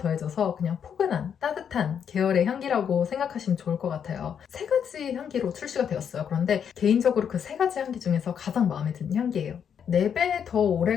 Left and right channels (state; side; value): quieter; right; 7.9 dB